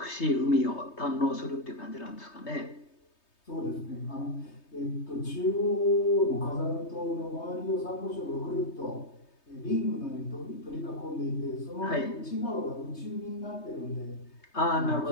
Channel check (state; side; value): late; right; 3.2 ms